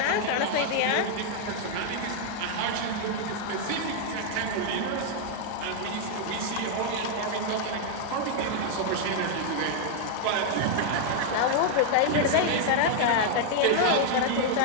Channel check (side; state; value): both; different; correlation 0.00